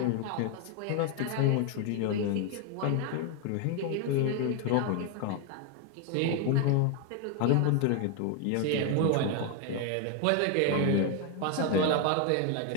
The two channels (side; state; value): both; different; correlation 0.01